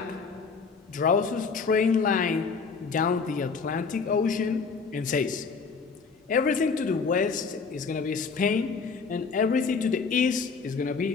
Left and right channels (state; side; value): quieter; right; 5.1 dB